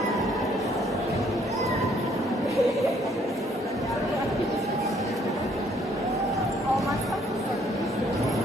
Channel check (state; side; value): normal; both; correlation 0.65